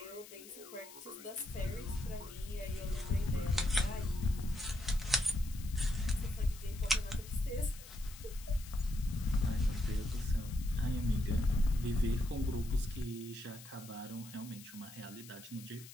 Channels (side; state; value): left; noise; hiss, 17 dB below the sound